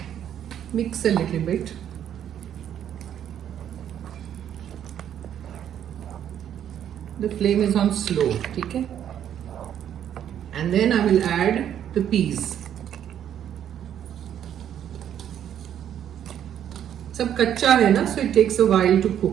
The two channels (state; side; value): quieter; left; 9.9 dB